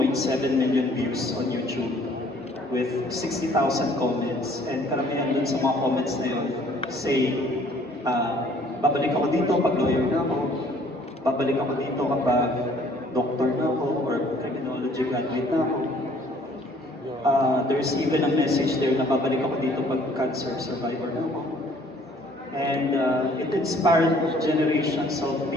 million views on YouTube with 60,000 comments. And karamihan dun sa mga comments na yun say, babalik ako dito pag lawyer na ako, babalik ako dito kapag doctor na ako, or criminology graduate na ako. There's even a message there na babalik ako dito pag cancer survivor na ako. And it inspired generations of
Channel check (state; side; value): normal; both; correlation 0.58